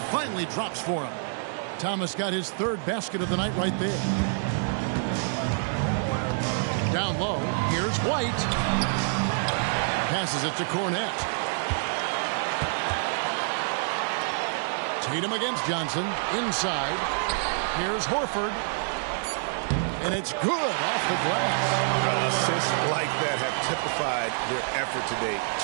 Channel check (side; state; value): left; silent; digital silence